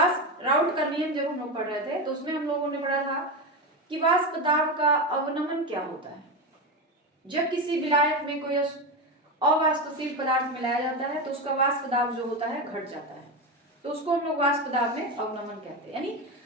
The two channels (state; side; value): normal; both; correlation 0.16